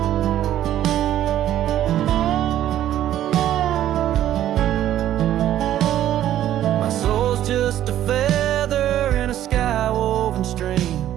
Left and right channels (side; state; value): left; quieter; 12.1 dB